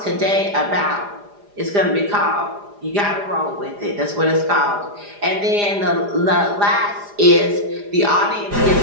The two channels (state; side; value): late; left; 4.9 ms